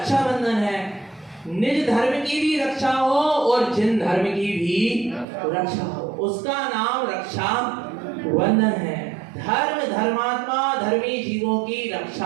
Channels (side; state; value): left; drops out; at 5.2 s